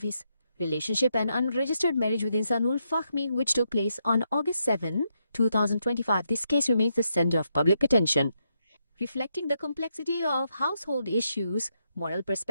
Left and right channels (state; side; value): inverted; both; correlation -0.79